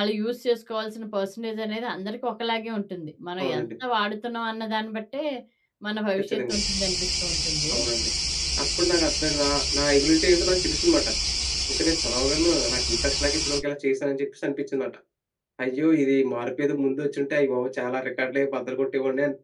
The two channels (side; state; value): both; identical; correlation 1.00